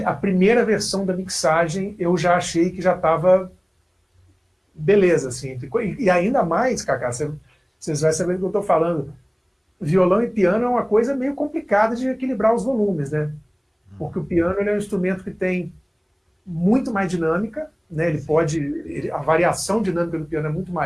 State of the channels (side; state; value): both; identical; correlation 1.00